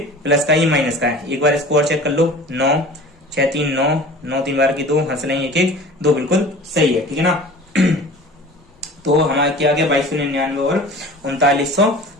प्लस का, ये माइनस का है। एक बार इसको और चेक कर लो, 9 6 3 9 9 3 बार की 2, हंस लेंगे 1 1 2, बिल्कुल सही है, ठीक है ना। तो हमारा क्या आ गया 2299 और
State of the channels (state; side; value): normal; both; correlation 0.41